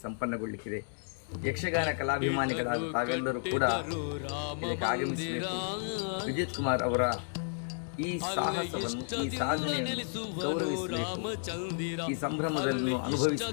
ಸಂಪನ್ನಗೊಳ್ಳಲಿಕ್ಕಿದೆ. ಯಕ್ಷಗಾನ ಕಲಾಭಿಮಾನಿಗಳಾದ ತಾವೆಲ್ಲರೂ ಕೂಡ ಇದಕ್ಕೆ ಆಗಮಿಸಬೇಕು. ವಿಜಿತ್ ಕುಮಾರ್ ಅವರ ಈ ಸಾಹಸವನ್ನು, ಈ ಸಾಧನೆಯನ್ನು ಗೌರವಿಸಬೇಕು, ಈ ಸಂಭ್ರಮದಲ್ಲಿ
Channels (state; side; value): silent; right; digital silence